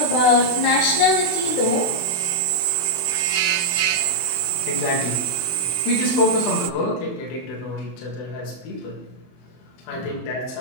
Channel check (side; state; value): right; late; 23 ms